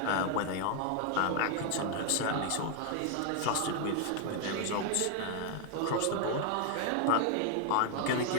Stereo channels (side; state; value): both; different; correlation 0.00